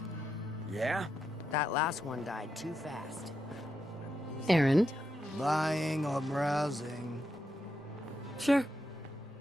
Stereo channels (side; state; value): both; normal; correlation 0.84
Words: Yeah? That last one died too fast. Aaron? Buying or browsing? Sure.